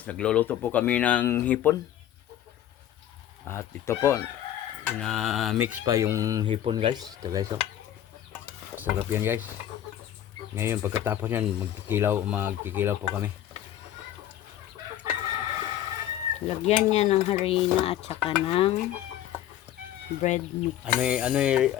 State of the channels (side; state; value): right; quieter; 11.7 dB